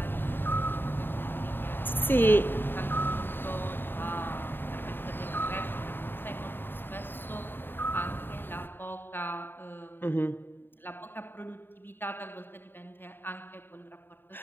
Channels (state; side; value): late; right; 0.098 ms